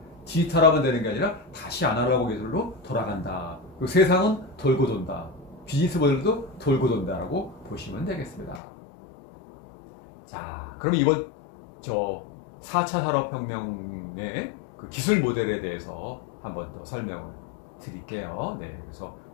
디지털화만 되는 게 아니라 다시 아날로그 기술로 돌아간다. 그리고 세상은 돌고 돈다. 비즈니스 모델도 돌고 돈다라고 보시면 되겠습니다. 자, 그럼 이번 4차 산업혁명의 그 기술 모델에 대해서 한번 더 설명을 드릴게요. 네, 그래서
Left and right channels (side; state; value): right; drops out; at 8.6 s